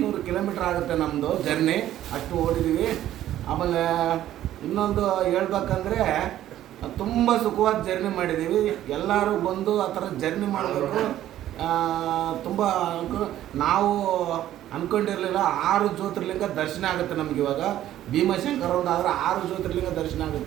ಕಿಲೋಮೀಟ್ರ್ ಆಗುತ್ತೆ ನಮ್ಮದು ಜರ್ನಿ, ಅಷ್ಟು ಓಡಿದ್ದೀವಿ. ಆಮೇಲೆ ಇನ್ನೊಂದು ಹೇಳ್ಬೇಕಂದ್ರೆ ತುಂಬ ಸುಖವಾದ ಜರ್ನಿ ಮಾಡಿದ್ದೀವಿ. ಎಲ್ಲರೂ ಬಂದು ಆ ಥರ ಜರ್ನಿ ಮಾಡಬೇಕು. ತುಂಬ ನಾವು ಅಂದ್ಕೊಂಡಿರಲಿಲ್ಲ 6 ಜ್ಯೋತಿರ್ಲಿಂಗ ದರ್ಶನ ಆಗುತ್ತೆ ನಮ್ಗೆ. ಇವಾಗ ಭೀಮಶಂಕರ ಒಂದು ಆದರೆ 6 ಜ್ಯೋತಿರ್ಲಿಂಗ ದರ್ಶನ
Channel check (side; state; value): left; quieter; 12.7 dB